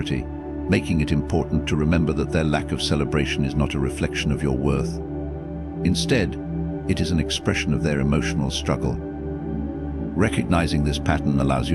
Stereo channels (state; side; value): identical; both; correlation 1.00